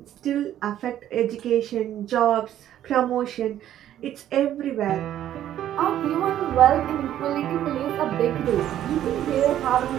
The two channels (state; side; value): quieter; left; 11.7 dB